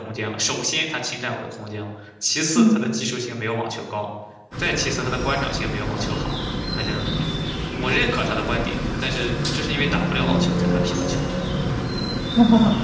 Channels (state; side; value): identical; both; correlation 1.00